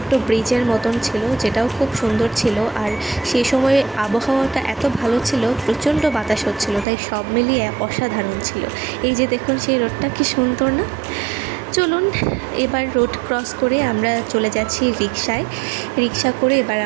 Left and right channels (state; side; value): drops out; left; at 6.9 s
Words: ব্রিজের মতন ছিল, যেটাও খুব সুন্দর ছিল। আর সেই সময় আবহাওয়াটা এত ভালো ছিল, প্রচণ্ড বাতাস হচ্ছিল, তাই সব মিলিয়ে অসাধারণ ছিল। এই যে দেখুন সেই রোডটা কি সুন্দর না। চলুন এবার রোড ক্রস করে আমরা চলে যাচ্ছি রিক্সা করে। এবার